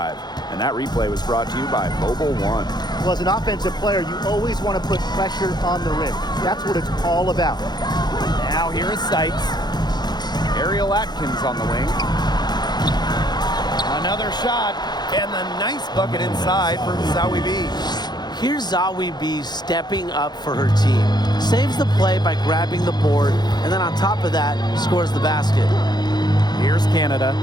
And that replay was brought to you by Mobile One. Well, as an offensive player, you always want to put pressure on the rim. That's what it's all about. Now here is Sykes. Ariel Atkins on the wing. Another shot, and the nice bucket inside from Zawi B. Here's Zawi B stepping up for her team. Saves the play by grabbing the board, and then on top of that, scores the basket. Here's Canada.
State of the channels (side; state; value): right; late; 0.20 ms